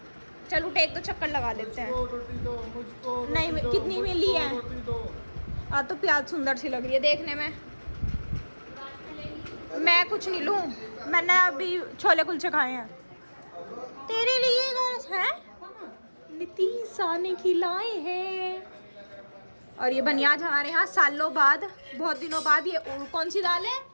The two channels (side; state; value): both; inverted; correlation -1.00